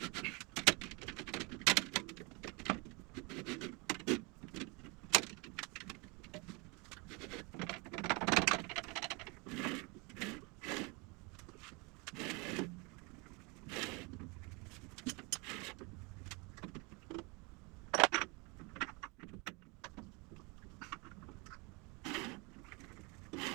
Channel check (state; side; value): quieter; left; 28.8 dB